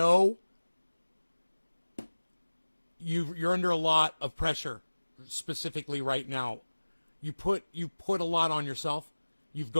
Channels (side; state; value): both; inverted; correlation -1.00